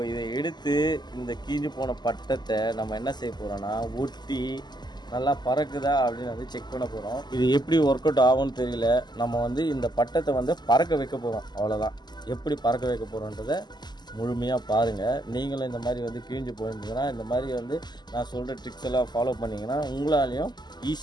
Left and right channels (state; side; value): late; right; 0.21 ms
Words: இதை எடுத்து இந்த கீஞ்சு போன பட்டத்தை நம்ம என்ன செய்ய போகிறோன்னா, ஒட்டி நல்லா பறக்குதா அப்படின்னு செக் பண்ண போகிறோம். இது எப்படி ஒர்க் அவுட் ஆகும்னு தெரியல. நம்ம இந்த பட்டத்தை பறக்க வைக்க போகிறோம், அவ்வளோதான். எப்படி பறக்க வைக்க போகிறோன்றதை முழுமையாக பாருங்கள். நீங்களும் இந்த மாதிரி கிழிஞ்சு போயிருந்தீங்கன்னா, இந்த மாதிரி நான் சொல்கிற ட்ரிக்ஸ் எல்லாம் ஃபாலோ பண்ணிங்கன்னா உங்களாலையும்